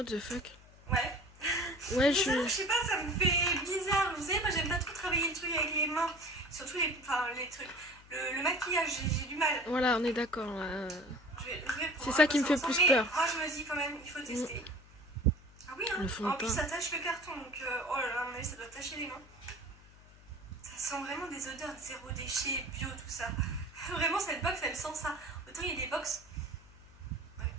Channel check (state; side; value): noise; left; hum, 23 dB below the sound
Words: the fuck? Ouais. Ouais, je sais pas, ça me fait bizarre. Vous savez, moi j'aime pas trop travailler le truc avec les mains. Surtout les trucs. Le maquillage, j'ai du mal. Voilà, on est d'accord. C'est ça qui me fait plus peur. Moi je me dis quand même, il faut tester. Ah oui, hein. En plus ça tâche le carton, donc oh là là, à mon avis ça doit tacher les mains. Ça Ça sent vraiment des odeurs de zéro déchet, bio, tout ça. Vraiment, cette box, elle sent ça. Autant il y a des box... Ouais.